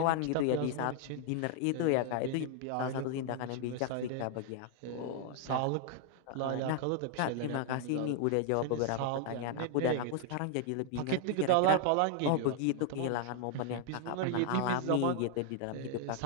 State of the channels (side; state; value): both; different; correlation 0.00